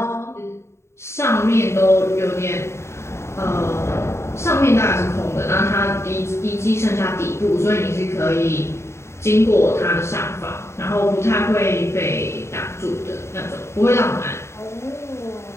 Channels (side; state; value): right; late; 0.13 ms